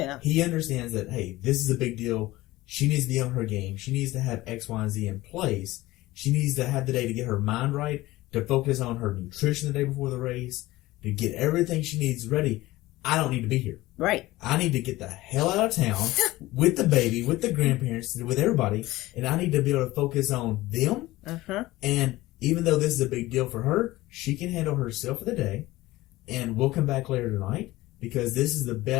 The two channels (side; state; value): right; quieter; 18.2 dB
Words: He understands that, hey, this is a big deal. She needs to be on her game. She needs to have X, Y, and Z in place. She needs to have the day to get her mind right, to focus on her nutrition the day before the race, to get everything she needs ready. I don't need to be here. Right. I need to get the hell out of town with the baby, with the grandparents, with everybody, and I need to be able to focus on them. And even though this is a big deal for her, she can handle herself for the day, and we'll come back later tonight because this is the